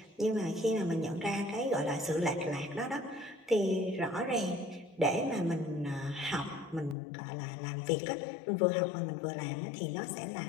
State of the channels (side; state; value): right; drops out; at 7.0 s